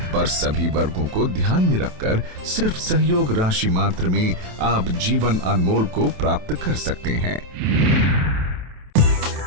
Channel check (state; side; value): late; left; 28 ms